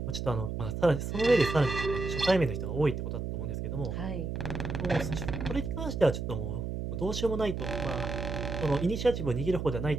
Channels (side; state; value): right; noise; hum, 4 dB below the sound